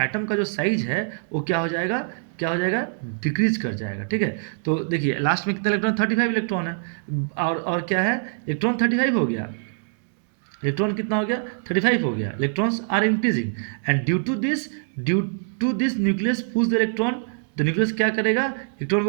का जो साइज है वो क्या हो जाएगा, डिक्रीज कर जाएगा। ठीक है, तो देखिए लास्ट में कितना इलेक्ट्रॉन, 35 इलेक्ट्रॉन है, और क्या है, इलेक्ट्रॉन 35 हो गया, इलेक्ट्रॉन कितना हो गया, 35 हो गया, electrons are increasing. And due to this nucleus pulls the electron, the nucleus क्या करेगा, इलेक्ट्रॉन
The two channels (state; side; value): silent; left; digital silence